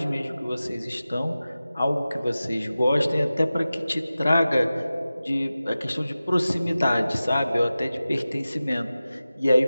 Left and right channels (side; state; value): both; inverted; correlation -0.95